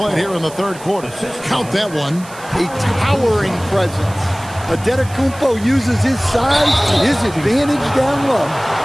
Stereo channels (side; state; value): right; noise; hiss, 19 dB below the sound